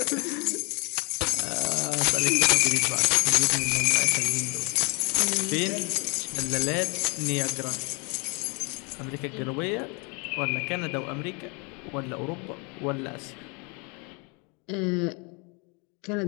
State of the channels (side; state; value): right; quieter; 32.7 dB